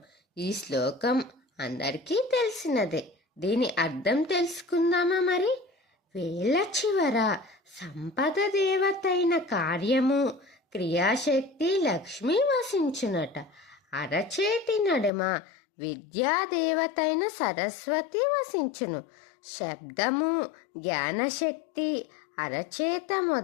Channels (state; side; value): drops out; right; at 15.1 s